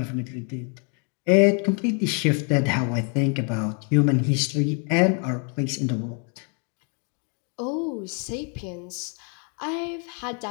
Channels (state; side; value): quieter; right; 38.6 dB